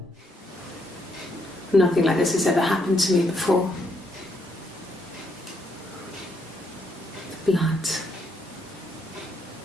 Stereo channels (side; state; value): both; normal; correlation 0.75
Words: Nothing like this has ever happened to me before. The blood.